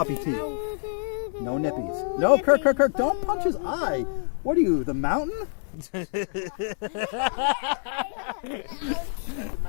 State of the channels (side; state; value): right; silent; 61 dB below the other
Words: teeth. No nippies. No, Kirk, don't punch his eye. What are you, the mountain? What